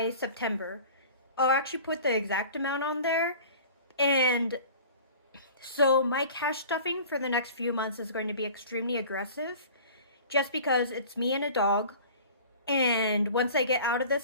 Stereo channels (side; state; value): both; inverted; correlation -0.43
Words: September. I'll actually put the exact amount on there. And so my cash stuffing for the next few months is going to be extremely aggressive just because it's me and a dog. And once I get out of